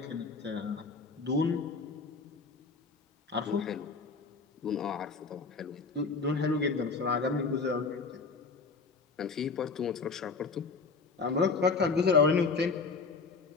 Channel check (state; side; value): quieter; right; 4.5 dB